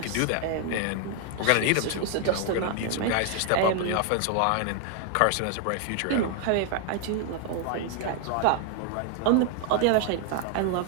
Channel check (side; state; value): both; different; correlation 0.00